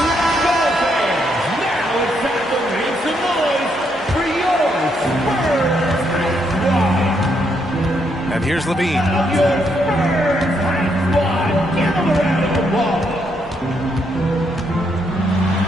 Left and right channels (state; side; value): normal; both; correlation 0.76